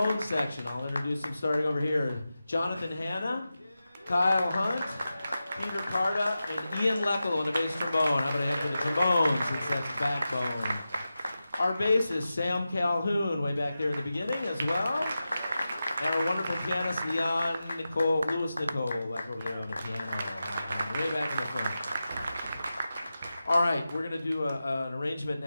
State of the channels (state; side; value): inverted; both; correlation -0.92